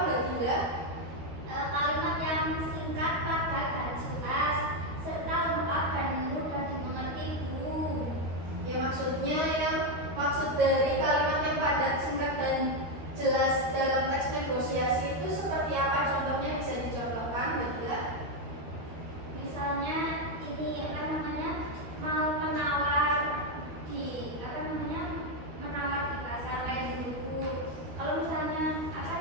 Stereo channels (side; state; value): left; late; 13 ms